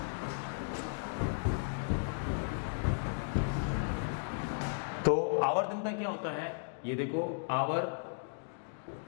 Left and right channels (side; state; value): right; silent; digital silence